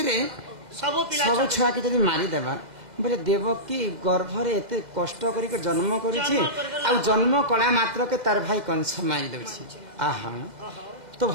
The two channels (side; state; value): left; late; 2.0 ms